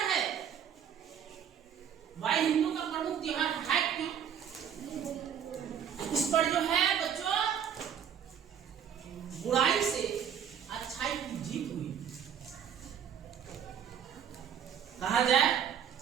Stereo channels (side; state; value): left; quieter; 8.4 dB